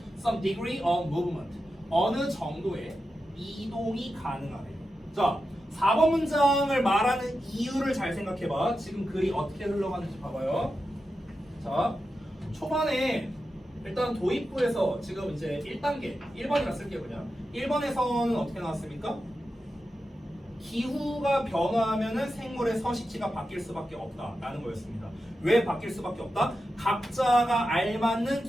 Some degree of movement. 어느 정도의 이동이 가능하대요. 자, 4번 문장을 말하는 이유를 잘 생각해봐. 지금 글이 어떻게 흘러가는지 봐봐요. 자, 초반에 일단 도입부에서 지금 이제 1단계, 1번이라 쓸게요 그냥. 1번에서는 어떻게 나왔습니까? 기후가 변화하면은 생물의 서식지가 바뀔 수밖에 없다라는 거였습니다. 왜 바뀔 수밖에 없다? 각자가 알맞는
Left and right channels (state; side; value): normal; both; correlation 0.90